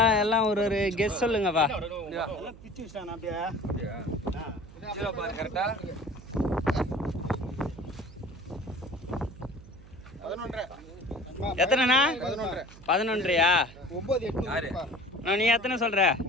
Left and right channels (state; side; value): noise; right; hum, 20 dB below the sound